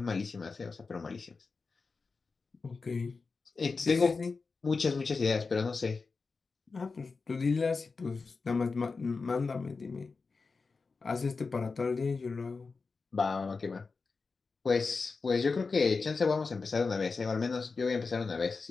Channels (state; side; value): quieter; right; 4.4 dB